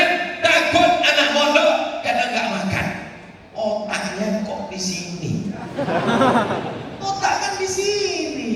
takut anak mondok karena nggak makan. Otaknya kok di sini? Otak kan di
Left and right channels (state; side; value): identical; both; correlation 1.00